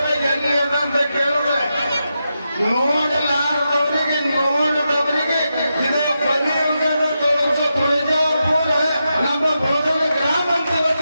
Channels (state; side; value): inverted; both; correlation -0.87